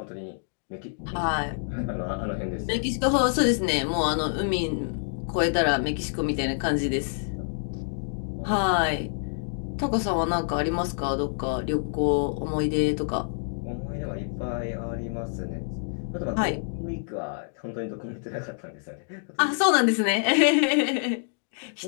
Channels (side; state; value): right; silent; digital silence